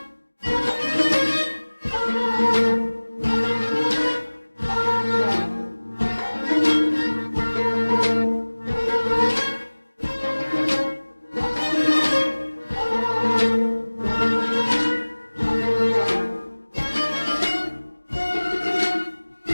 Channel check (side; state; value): both; inverted; correlation -1.00